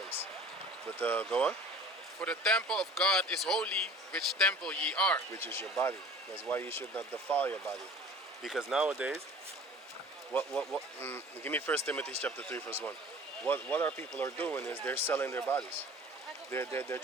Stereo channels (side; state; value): both; normal; correlation 0.45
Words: But go on. For the temple of God is holy, which temple ye are. Which is your body. That's why you should not defile your body. Because nowadays, give me 1 Timothy chapter 3 verse 1. What our people are doing is they're selling their bodies. They're